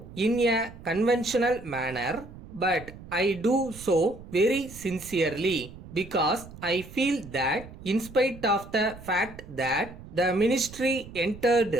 in a conventional manner, but I do so very sincerely because I feel that in spite of the fact that the ministry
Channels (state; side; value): noise; right; rumble, 16 dB below the sound